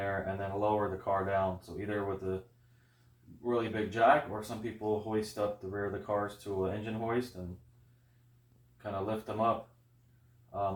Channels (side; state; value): both; identical; correlation 1.00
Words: and then lower the car down. So either with a really big jack, or some people hoist up the rear of the cars to an engine hoist and kind of lift them up,